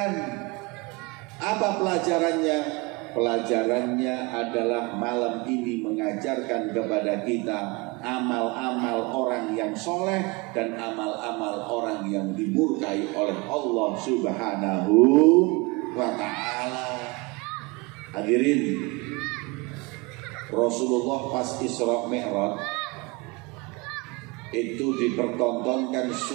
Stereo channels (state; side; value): quieter; left; 26.4 dB